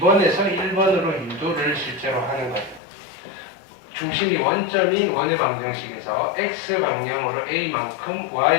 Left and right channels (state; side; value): drops out; right; at 2.8 s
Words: 1번으로 유도를 실제로 하는 거예요. 중심이 원점인 원의 방정식에서 x 방향으로 a만큼,